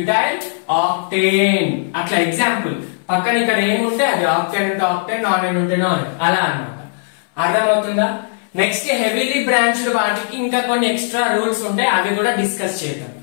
ఆక్టేన్. అట్లా ఎగ్జాంపుల్. పక్కన ఇక్కడ ఏముంటే అది ఆక్టేన్ ఉంటే ఆక్టేన్, నాన్ ఉంటే నాన్, అలా అన్నమాట. అర్థమవుతుందా? నెక్స్ట్ హెవీలీ బ్రాంచ్డ్ వాటికి ఇంకా కొన్ని ఎక్స్ట్రా రూల్స్ ఉంటాయి, అవి కూడా డిస్కస్ చేద్దాం.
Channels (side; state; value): right; silent; 61 dB below the other